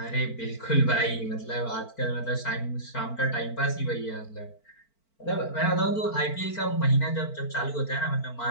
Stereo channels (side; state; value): right; late; 4.4 ms